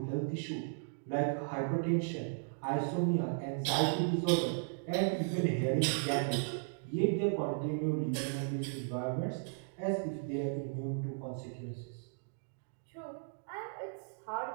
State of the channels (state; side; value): silent; left; digital silence